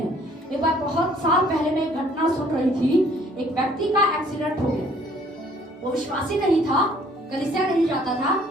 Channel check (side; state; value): both; normal; correlation 0.59